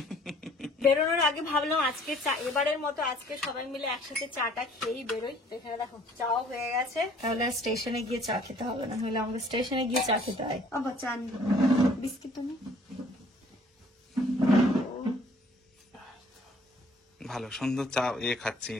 বেরোনোর আগে ভাবলাম আজকে এবারের মতো আজকে সবাই মিলে একসাথে চাটা খেয়েই বেরোই। তো এখানে দেখো চাও হয়ে গেছে, তাহলে স্টেশনে গিয়ে চা খেতে হবে না, হলে আমাকে স্টেশনে গিয়ে চা খেতে হয়। আবার চা নি, বিস্কিট তুমি। ভালো সুন্দর চা খাচ্ছে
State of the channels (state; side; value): normal; both; correlation 0.57